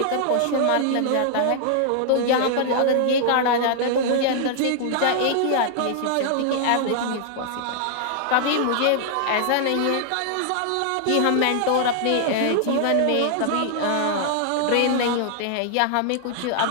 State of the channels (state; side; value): different; both; correlation -0.01